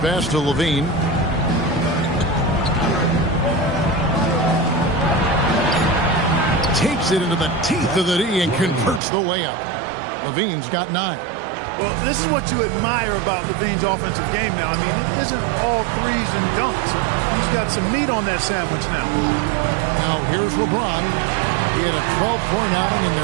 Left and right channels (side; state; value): left; drops out; at 9.0 s